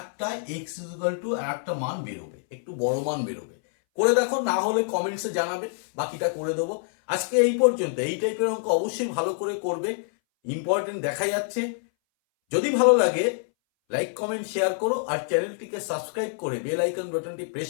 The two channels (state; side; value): silent; right; 60 dB below the other